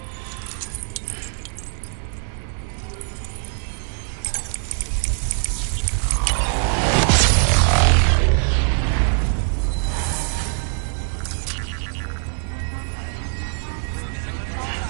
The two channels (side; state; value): left; silent; digital silence